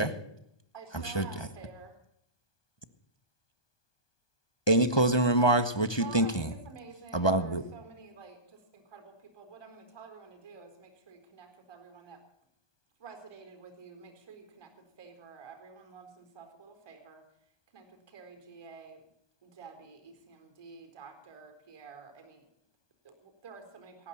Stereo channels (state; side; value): late; right; 1.2 ms